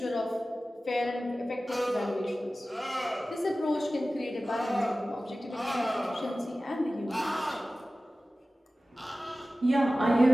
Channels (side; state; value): both; normal; correlation 0.96